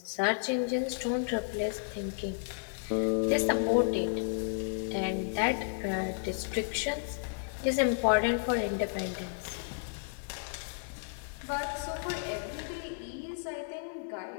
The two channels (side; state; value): right; silent; 56 dB below the other